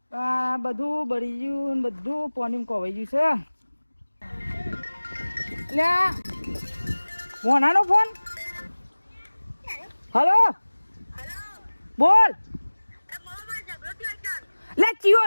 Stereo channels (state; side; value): inverted; both; correlation -1.00